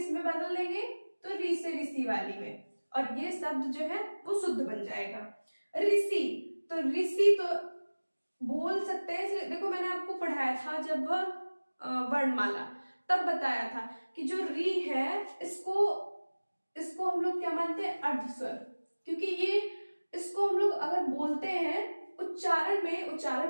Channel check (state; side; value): inverted; both; correlation -1.00